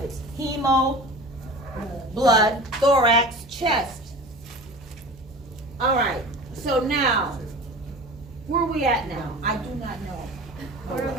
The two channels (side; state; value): both; normal; correlation 0.37